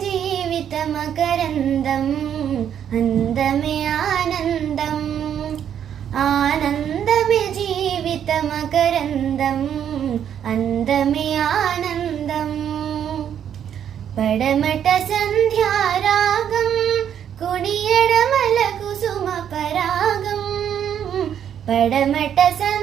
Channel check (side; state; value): left; quieter; 9.2 dB